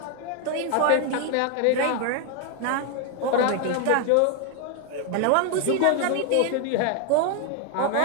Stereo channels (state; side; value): different; both; correlation 0.01